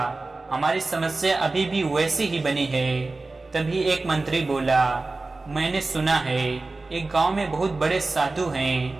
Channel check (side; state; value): left; quieter; 3.4 dB